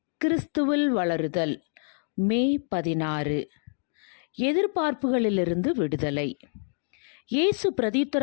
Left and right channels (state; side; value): silent; right; digital silence